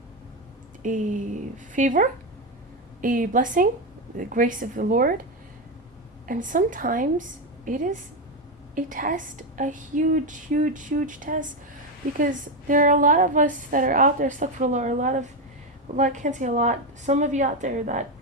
favor, a blessing, the grace of the Lord. And sometimes it is a test, a huge test, because there are a lot of us that are out there, astaghfirullah, I can't say a lot, some of you out there that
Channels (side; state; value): both; normal; correlation 0.09